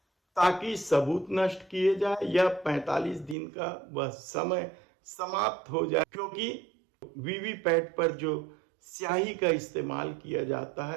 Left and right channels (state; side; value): drops out; left; at 3.4 s